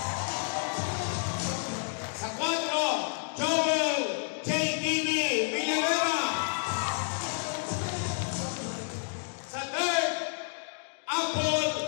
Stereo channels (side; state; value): right; silent; digital silence